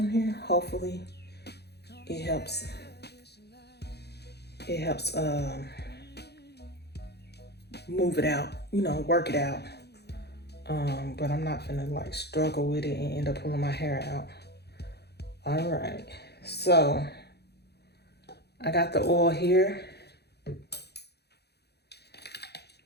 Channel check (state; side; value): late; right; 0.48 ms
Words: here, hopefully it helps. It helps move it out, work it out. But I'm not gonna like struggle with it and end up pulling my hair out. All right, so I got the oil here.